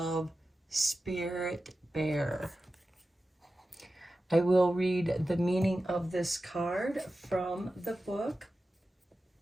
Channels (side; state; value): both; normal; correlation 0.93